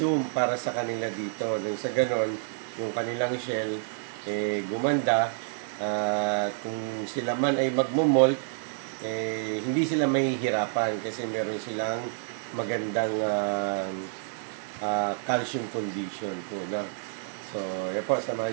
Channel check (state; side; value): silent; left; 56 dB below the other